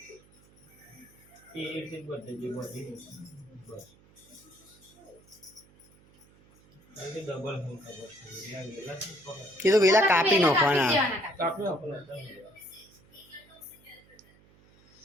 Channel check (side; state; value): right; noise; hum, 28 dB below the sound